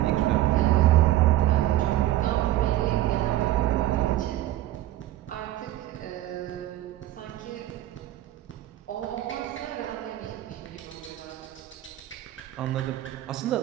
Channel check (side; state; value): left; quieter; 14.3 dB